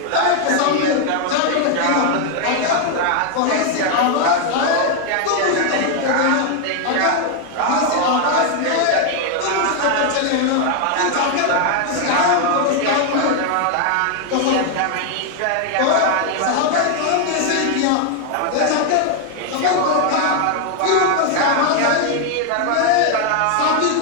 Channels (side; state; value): both; different; correlation 0.00